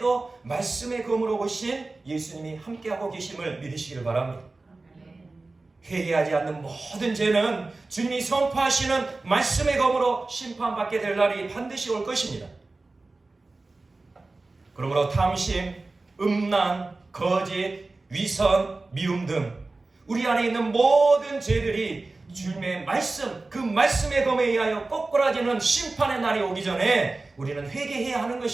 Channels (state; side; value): quieter; left; 3.4 dB